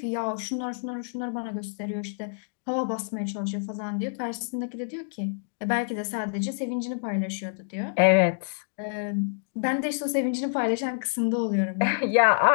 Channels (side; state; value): right; silent; digital silence